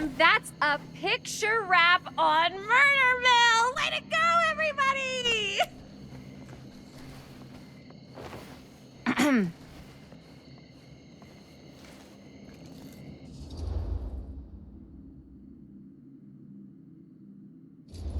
that's a picture wrap on Murder Mill! Way to go, everybody!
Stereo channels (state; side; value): identical; both; correlation 1.00